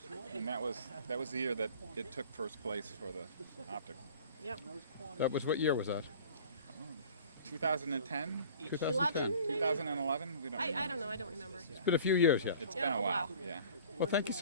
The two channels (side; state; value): both; inverted; correlation -0.46